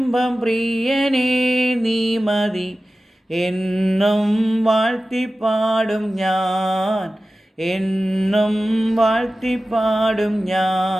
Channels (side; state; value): both; normal; correlation 0.95